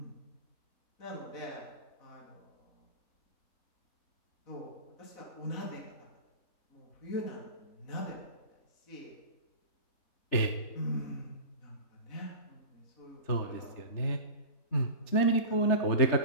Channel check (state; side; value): late; right; 3.4 ms